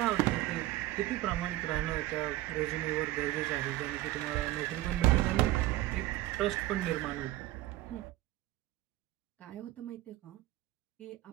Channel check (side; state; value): left; quieter; 16.8 dB